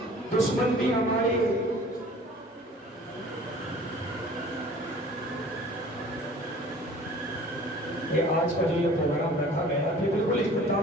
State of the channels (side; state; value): both; normal; correlation 0.48